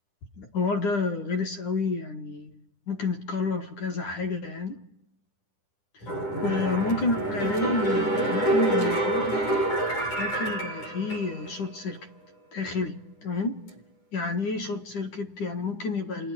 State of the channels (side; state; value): right; late; 10 ms